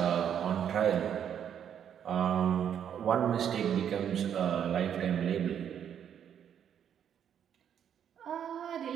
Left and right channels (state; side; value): quieter; left; 8.9 dB